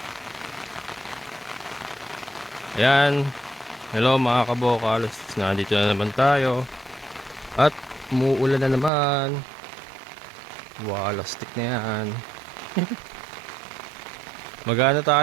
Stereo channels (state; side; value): drops out; left; at 8.9 s